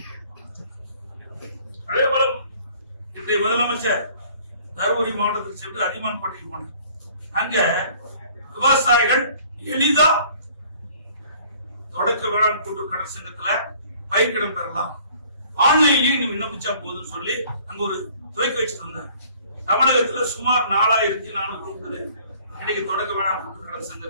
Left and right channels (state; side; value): inverted; both; correlation -0.55